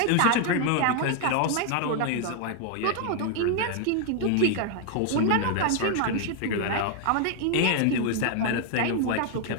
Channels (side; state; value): both; different; correlation 0.00